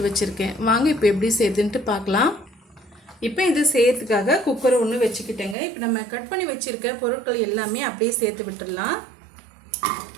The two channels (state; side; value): drops out; left; at 5.6 s